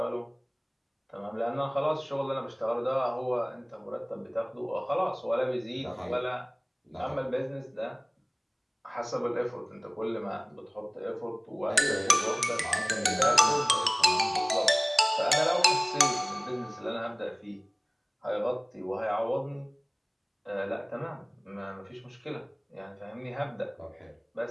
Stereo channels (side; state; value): both; identical; correlation 1.00